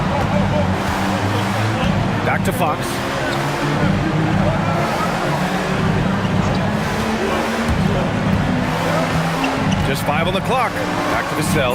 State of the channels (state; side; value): identical; both; correlation 1.00